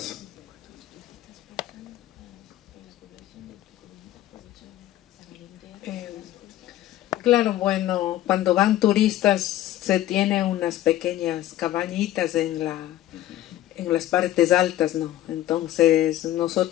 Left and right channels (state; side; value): quieter; right; 13.8 dB